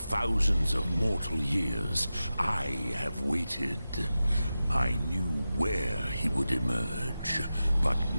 of mortal years, I have waited. I knew where he would emerge, but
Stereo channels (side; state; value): both; inverted; correlation -0.93